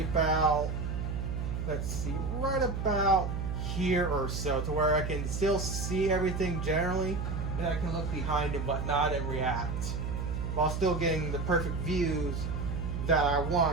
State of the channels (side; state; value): right; noise; hum, 2 dB below the sound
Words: about, let's see, right about here or so, to where I can still see everything generally, and I can look behind and whatnot and react, while still getting the perfect views that I